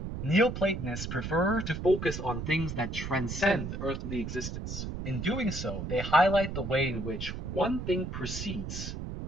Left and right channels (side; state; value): right; noise; rumble, 6 dB below the sound